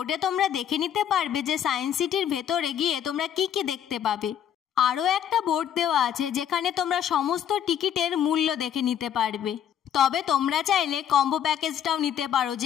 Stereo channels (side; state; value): right; quieter; 9.4 dB